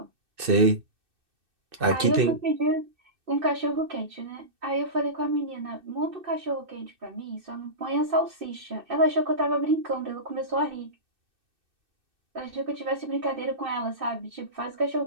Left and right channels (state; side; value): late; left; 2.6 ms